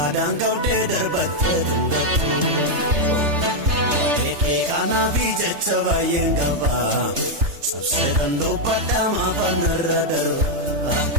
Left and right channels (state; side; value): late; left; 3.3 ms